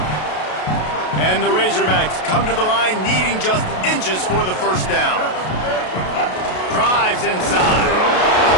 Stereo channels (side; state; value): right; late; 32 ms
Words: And the Razorbacks come to the line needing just inches for the first down. Drives inside.